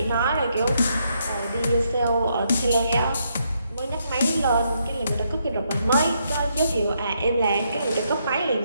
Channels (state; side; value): inverted; both; correlation -0.76